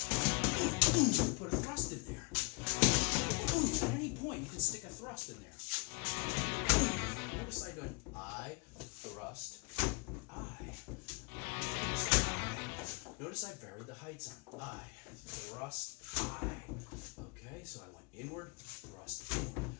Put a thrust in there. At any point, you can stick a thrust in there. Notice I'm doing I, thrust, I. Notice I varied the heights on I, thrust, I. Okay, so I went inward, thrust, inward.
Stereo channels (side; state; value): right; quieter; 31.5 dB